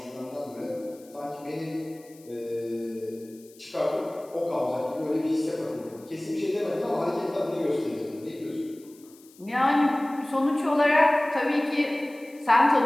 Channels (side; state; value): left; noise; hiss, 26 dB below the sound